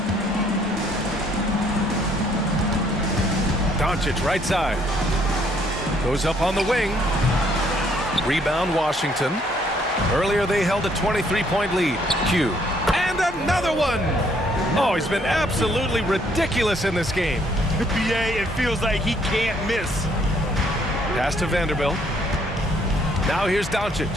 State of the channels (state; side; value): normal; both; correlation 0.66